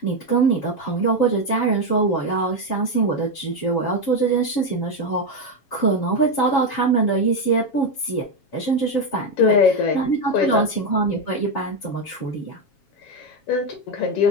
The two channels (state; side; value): late; right; 7.3 ms